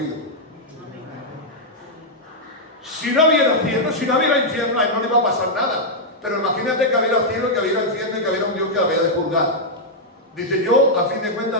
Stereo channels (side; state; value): both; normal; correlation -0.04